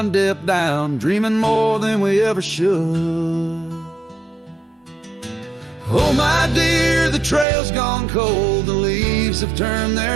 dip down, dreaming more than we ever should. Oh my dear, the trail's gone cold, the leaves have turned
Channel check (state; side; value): drops out; left; at 7.5 s